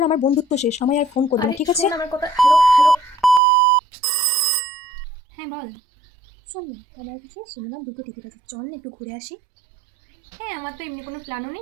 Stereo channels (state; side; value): drops out; left; at 3.4 s